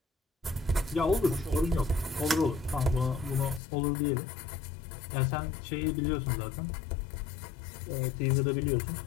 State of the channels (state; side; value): drops out; right; at 3.6 s